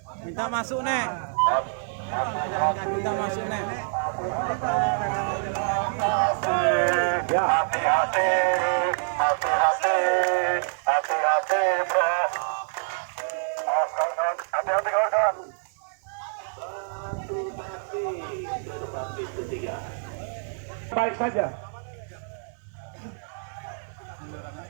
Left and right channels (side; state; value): left; silent; 61 dB below the other